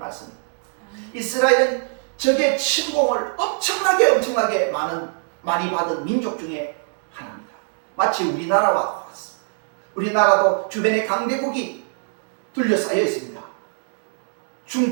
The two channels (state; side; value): silent; left; 64 dB below the other